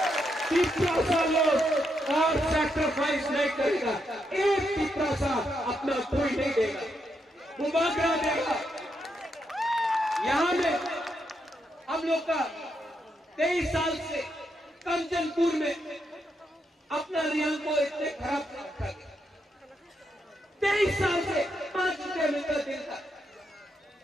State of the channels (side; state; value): both; normal; correlation 0.80